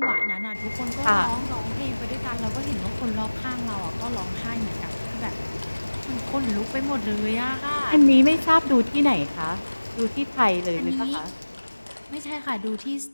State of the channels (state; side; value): inverted; both; correlation -1.00